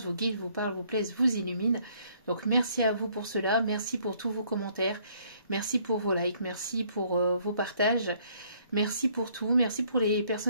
vous guident, vous parlent, vous plaisent, vous illuminent. Donc merci à vous pour cela, merci pour tous vos commentaires, merci pour vos likes, merci pour vos partages. Merci pour tout, merci pour les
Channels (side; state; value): both; inverted; correlation -0.64